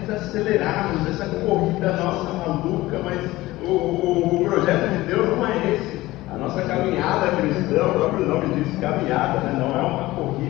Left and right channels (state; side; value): quieter; right; 18.2 dB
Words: desacelerarmos essa corrida nossa maluca, mas o projeto de Deus não é esse. A nossa caminhada cristã, o próprio nome diz caminhada, né? Não é uma